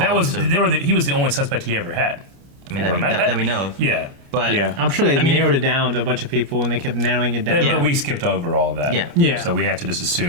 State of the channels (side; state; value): left; late; 30 ms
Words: following, was so, he was the only suspect he ever had. I mean, that we know of. Yeah. But I'm sure they I mean, narrowed it down to a bunch of people and they kept narrowing it down. But we skipped over all of that. Yeah. Yeah. So we have to just